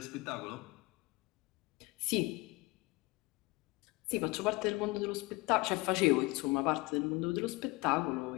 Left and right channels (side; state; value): right; quieter; 23.3 dB